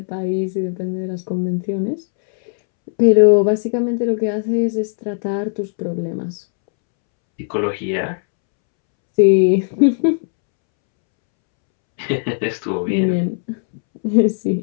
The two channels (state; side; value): silent; right; 67 dB below the other